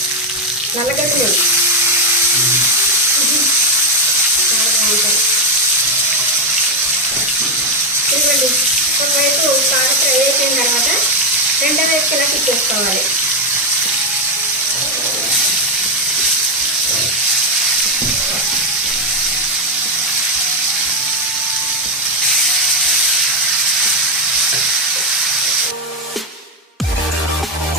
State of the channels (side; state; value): both; normal; correlation 0.05